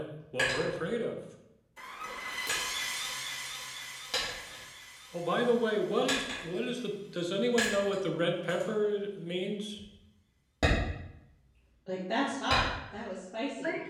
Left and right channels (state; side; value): identical; both; correlation 1.00